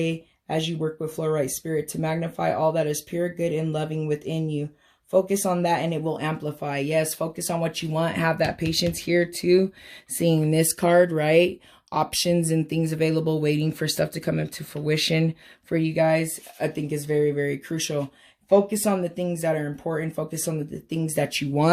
as you work with Fluorite spirit to magnify all that is pure, good, and loving within you. Focus on that and it will amplify. Yes, focus on what you want. Have that patience here too. Seeing this card, right? Options and things available, waiting for stuff to come into fruition for you guys, I think is very, very crucial. Focus on the things that are important. Focus on the things that you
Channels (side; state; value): both; identical; correlation 1.00